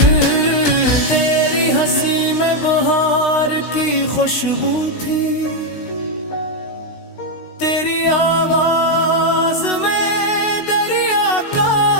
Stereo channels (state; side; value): late; right; 16 ms